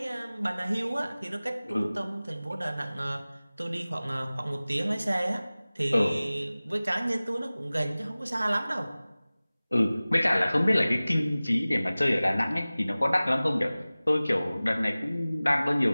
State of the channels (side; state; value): both; inverted; correlation -0.98